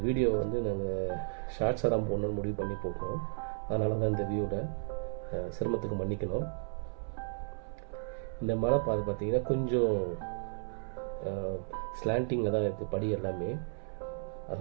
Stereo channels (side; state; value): left; silent; 55 dB below the other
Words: வீடியோவை வந்து நாங்கள் ஷார்ட்ஸாக தான் போடணும்னு முடிவு பண்ணி போட்டோம். அதனால தான் இந்த வியூவில் சிரமத்துக்கு மன்னிக்கணும். இந்த மலை பாதை பார்த்தீங்கன்னா கொஞ்சம் ஸ்லாண்டிங்கில் தான் இருக்குது படி எல்லாமே.